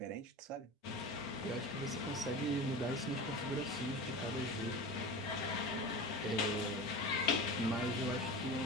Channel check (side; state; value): both; normal; correlation 0.30